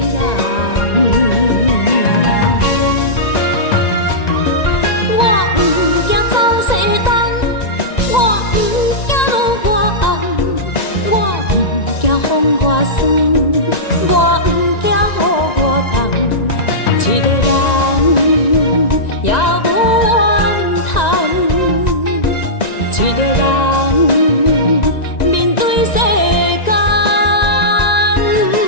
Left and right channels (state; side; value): late; right; 1.9 ms